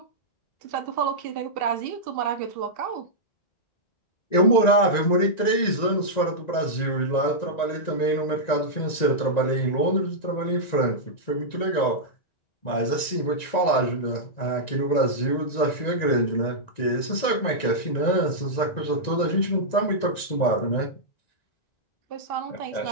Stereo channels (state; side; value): late; right; 1.9 ms